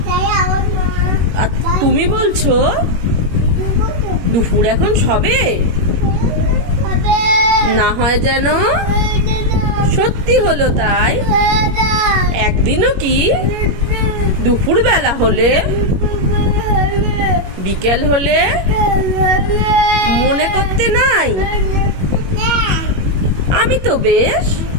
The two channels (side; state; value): left; late; 21 ms